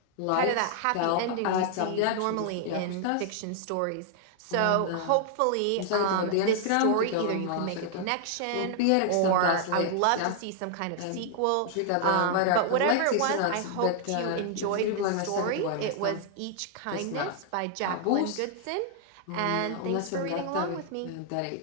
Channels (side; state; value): both; different; correlation -0.01